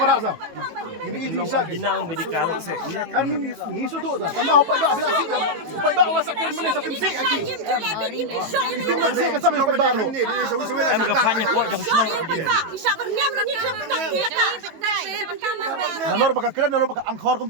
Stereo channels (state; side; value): late; left; 18 ms